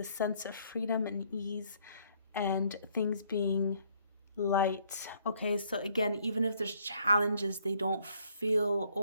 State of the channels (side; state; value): both; inverted; correlation -0.66